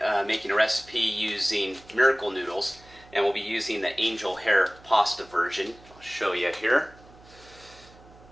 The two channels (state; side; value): noise; right; hum, 24 dB below the sound